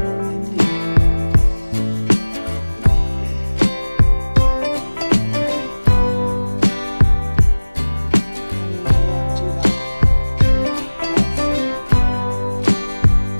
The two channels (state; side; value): inverted; both; correlation -1.00